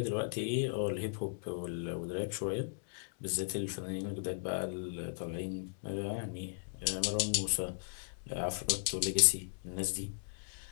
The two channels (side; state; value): right; silent; digital silence